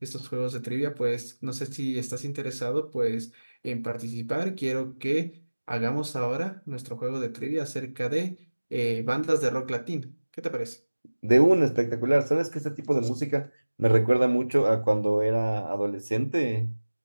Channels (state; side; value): inverted; both; correlation -1.00